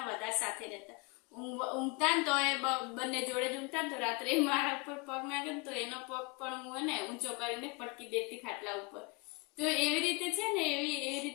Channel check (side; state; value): right; quieter; 29.0 dB